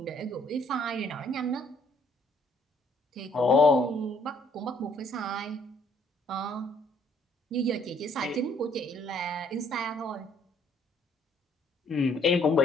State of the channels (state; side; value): normal; both; correlation 0.64